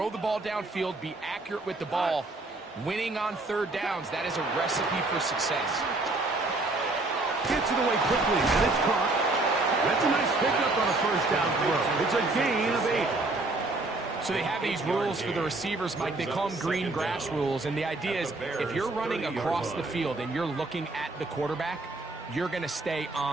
the ball downfield, be accurate with the ball. Winning on third downs, that is a recipe for success. Gets it away quickly, and it's caught. That's a nice pickup on a first down throw. It's a gain of 8. So they have these rules for the receivers, Mike. They call them green grass rules, and the idea is if you're running across the field and you're looking at the quarterback, you're going to stay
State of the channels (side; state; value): left; quieter; 3.0 dB